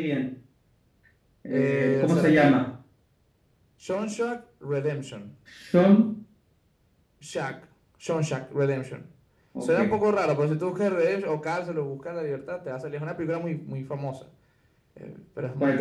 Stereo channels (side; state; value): both; identical; correlation 1.00